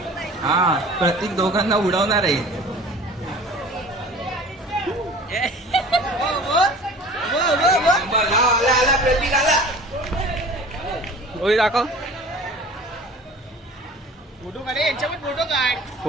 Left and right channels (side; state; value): both; normal; correlation 0.43